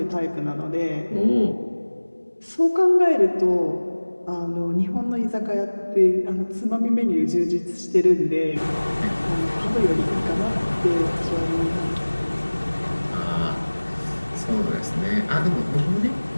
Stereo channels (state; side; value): inverted; both; correlation -1.00